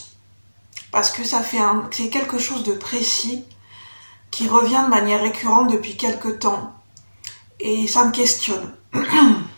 Parce que c'est quelque chose de précis qui revient de manière récurrente depuis quelques temps. Et ça me questionne.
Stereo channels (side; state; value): both; inverted; correlation -1.00